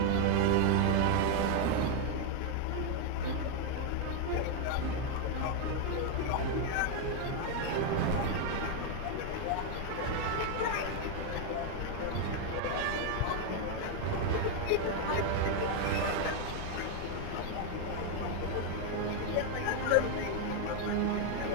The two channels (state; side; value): different; both; correlation 0.01